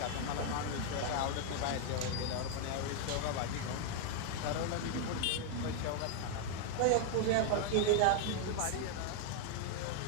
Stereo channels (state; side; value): different; both; correlation 0.00